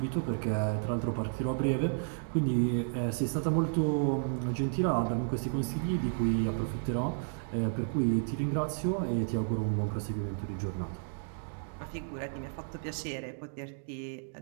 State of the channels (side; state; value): left; silent; digital silence